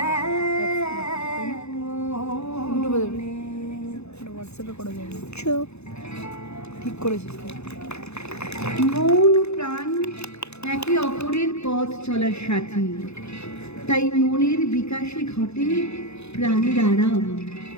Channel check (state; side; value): late; right; 0.80 ms